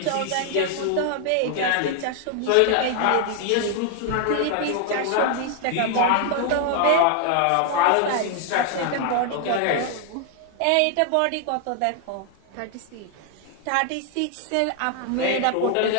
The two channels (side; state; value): both; different; correlation 0.00